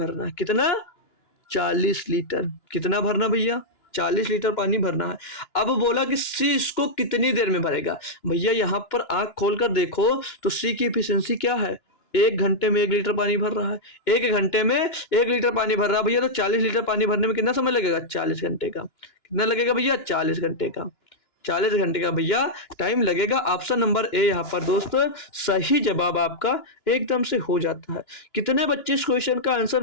है। कितना? 40 लीटर। कितना भरना भैया? 40 लीटर पानी भरना है। अब बोला कि सी इसको कितनी देर में भरेगा? भैया यहाँ पर आंख खोलकर देखो तो सी की एफिशिएंसी क्या है? 1 घंटे में 1 लीटर पानी भर रहा है। 1 घंटे में 1 लीटर पानी भर रहा है भैया, तो 40 लीटर पानी भरने में कितना समय लगेगा? 40 घंटे का। कितना लगेगा भैया? 40 घंटे का। 40 घंटे का भैया टाइम लगेगा। ऑप्शन नंबर ए यहाँ पर दोस्तों सही जवाब आपका एकदम से हो जाता है। कितने बच्चे इस क्वेश्चन का आंसर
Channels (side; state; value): right; late; 2.9 ms